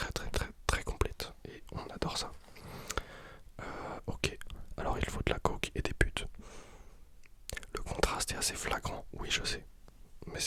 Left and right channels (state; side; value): identical; both; correlation 1.00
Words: complète et on adore ça. Ok, alors il faut de la coke et des putes. Le contraste est assez flagrant, oui je sais. Mais